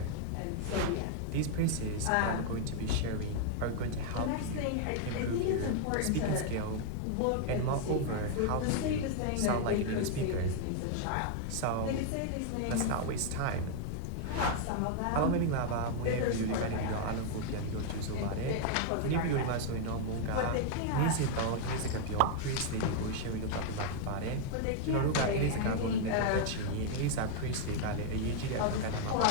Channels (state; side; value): different; both; correlation 0.00